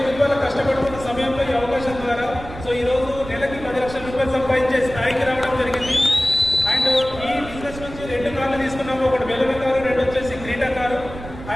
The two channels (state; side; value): noise; right; rumble, 13 dB below the sound